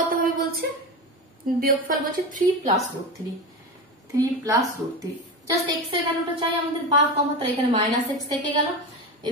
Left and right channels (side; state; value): both; normal; correlation 0.22